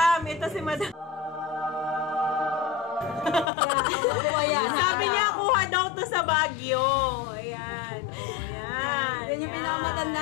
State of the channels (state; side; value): drops out; right; at 3.5 s